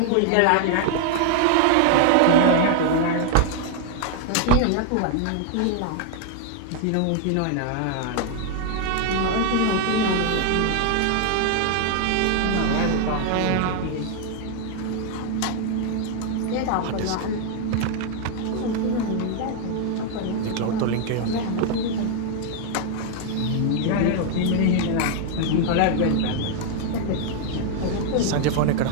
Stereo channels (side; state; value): both; different; correlation 0.00